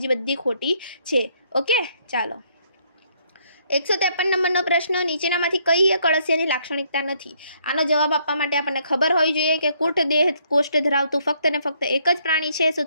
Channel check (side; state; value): both; inverted; correlation -0.69